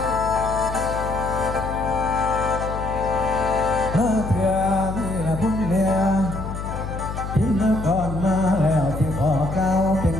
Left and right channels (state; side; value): noise; left; hum, 7 dB below the sound